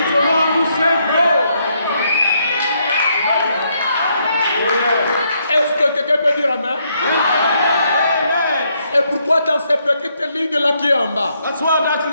the one who sent Paul. Est-ce que quelqu'un peut dire amen? Et pourquoi dans cette petite ligne-là qui est en bas? That's why that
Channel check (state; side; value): inverted; both; correlation -0.74